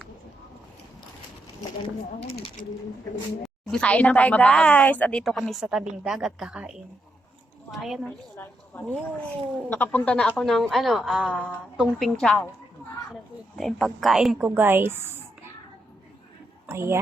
Kain na tayo guys. Andito kami sa tabing dagat kakain. Ayan o. Nakapunta na ako ng Tungping Chow. Ito yung pagkain ko guys.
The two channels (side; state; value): both; normal; correlation 0.81